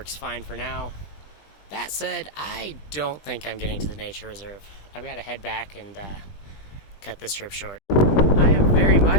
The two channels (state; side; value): late; right; 20 ms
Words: fine for now. That said, I don't think I'm getting to the nature reserve. I've got to head back and cut this trip short. I am very